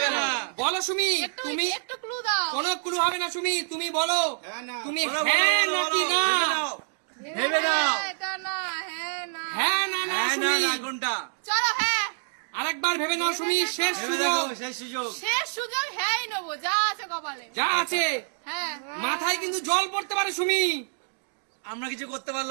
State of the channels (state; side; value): silent; left; digital silence